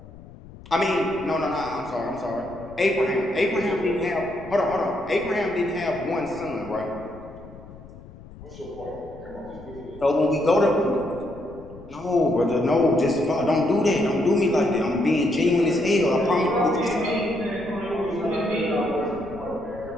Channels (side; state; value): left; noise; rumble, 18 dB below the sound